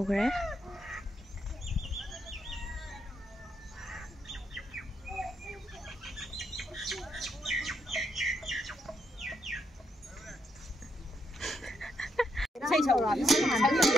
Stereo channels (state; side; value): normal; both; correlation 0.78